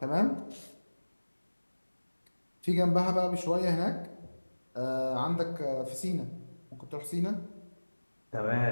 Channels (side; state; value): both; inverted; correlation -1.00